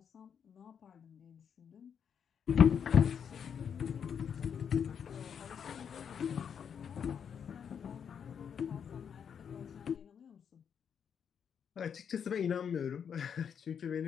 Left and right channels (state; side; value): quieter; right; 7.5 dB